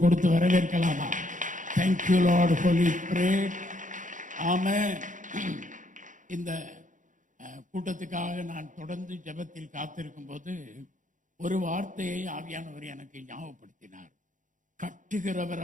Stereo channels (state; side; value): late; left; 0.37 ms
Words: கொடுத்து வரவேற்கலாமா? Thank you Lord, Holy Spirit. ஆமென். இந்த கூட்டத்துக்காக நான் தொடர்ந்து ஜெபத்தில் காத்திருக்கும் போது ஒரு வார்த்தையை ஆவியானவர் எனக்கு ஞாபகப்படுத்தினார்.